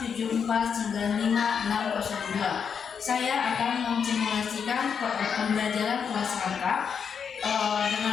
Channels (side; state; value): right; quieter; 6.8 dB